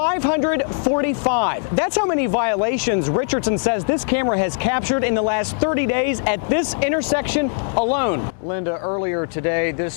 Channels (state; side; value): silent; right; digital silence